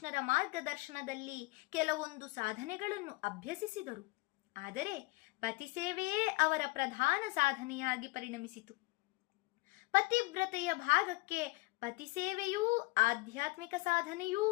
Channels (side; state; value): right; quieter; 24.2 dB